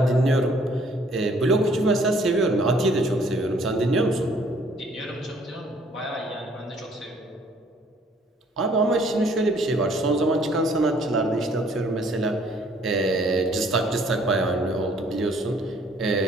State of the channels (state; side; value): normal; both; correlation 0.61